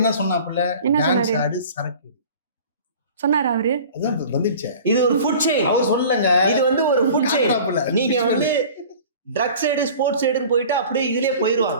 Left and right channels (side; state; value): both; inverted; correlation -0.43